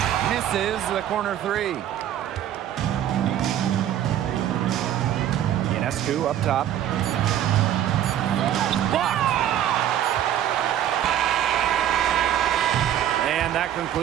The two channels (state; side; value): quieter; left; 11.1 dB